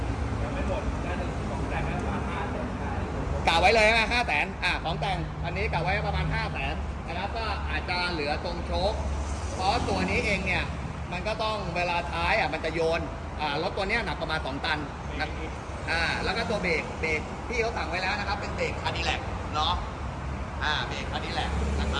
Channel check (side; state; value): both; identical; correlation 1.00